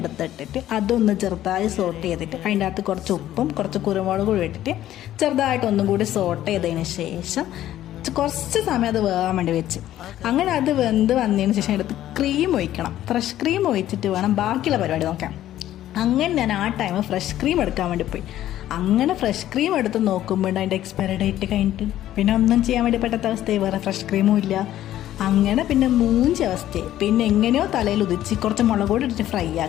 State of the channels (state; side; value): quieter; right; 12.9 dB